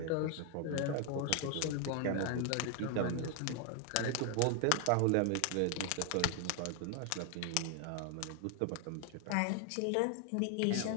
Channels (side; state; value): both; different; correlation 0.00